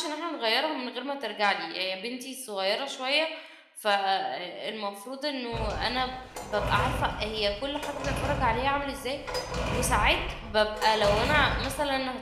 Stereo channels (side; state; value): both; identical; correlation 1.00